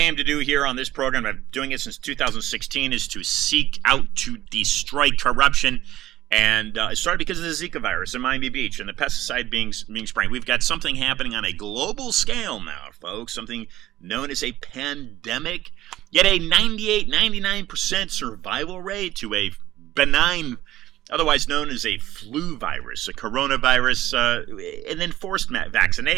to do here on this program, I've been doing it since 2016, is to seek out to destroy corruption. And it started because of the Zika virus in Miami Beach and the pesticide being sprayed. We've got something happening on a global scale now, folks, something known as a pandemic, yet a 98, 99% survival rate to a benign, otherwise known as a flu virus, a coronavirus, and then forced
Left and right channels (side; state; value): left; quieter; 14.7 dB